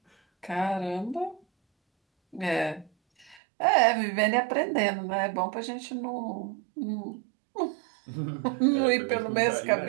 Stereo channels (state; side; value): drops out; left; at 3.4 s